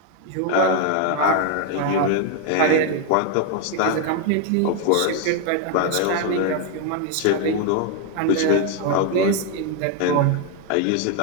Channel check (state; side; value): different; both; correlation 0.01